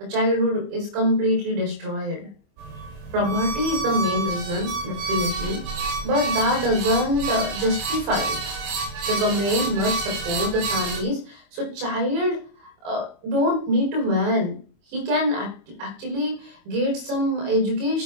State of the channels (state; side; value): late; left; 25 ms